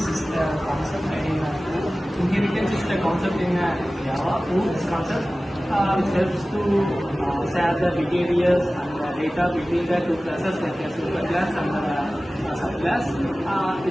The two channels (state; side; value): normal; both; correlation 0.97